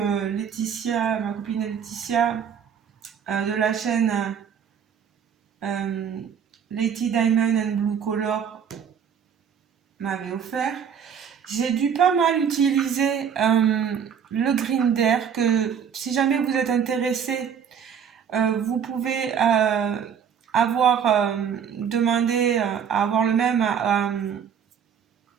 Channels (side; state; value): left; quieter; 7.7 dB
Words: Laetitia, ma copine Laetitia, de la chaîne Lady Diamond and Blue Color m'avait offert. J'ai dû pas mal utiliser le Grinder, que si jamais vous êtes intéressé, vous pouvez demander à avoir le même